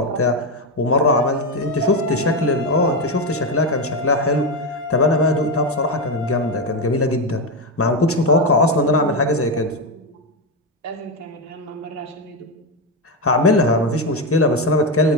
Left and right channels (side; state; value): both; normal; correlation 0.10